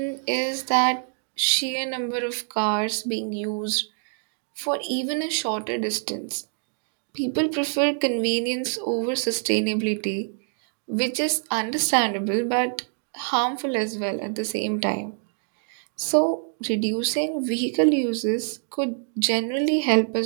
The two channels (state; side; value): silent; left; digital silence